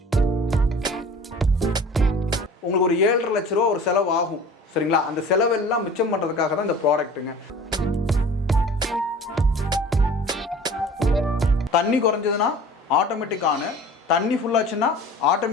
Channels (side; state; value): both; normal; correlation 0.44